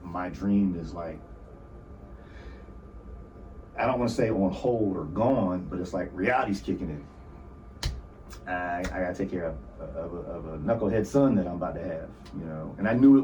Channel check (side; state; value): both; identical; correlation 1.00